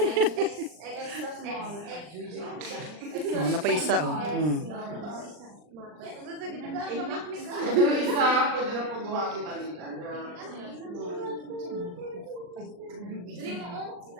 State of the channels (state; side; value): late; left; 39 ms